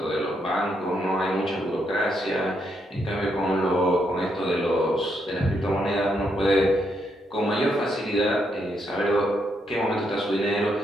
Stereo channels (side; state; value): both; normal; correlation 0.78